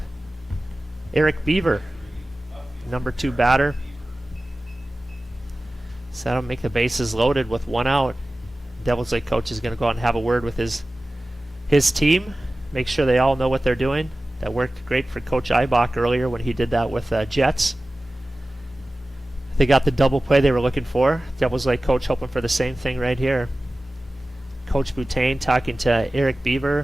Eric Beaver, number 2 batter. So that'll make the bases loaded with 1 out. Devils Lake coach is gonna go out and have a word with his his team, make sure they all know what they're doing. That worked great for Coach Eibach earlier when he did that with Jets. They got the double play they were looking for. Devils Lake coach hoping for the same thing right here. Coach Boutain talking to Eric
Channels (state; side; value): normal; both; correlation 0.97